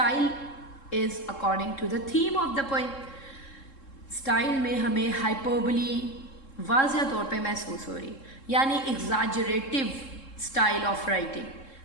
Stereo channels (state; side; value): late; right; 3.7 ms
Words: is according to the theme of the poem, style میں ہمیں ہائپربلی واضح طور پہ محسوس ہو رہی، یعنی ایگزاجریٹو سٹائل آف